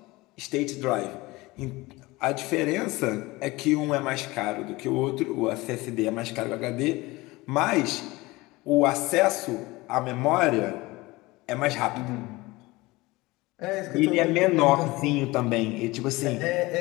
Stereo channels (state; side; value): quieter; right; 21.3 dB